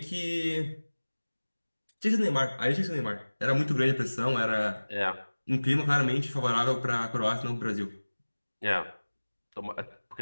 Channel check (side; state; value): both; inverted; correlation -1.00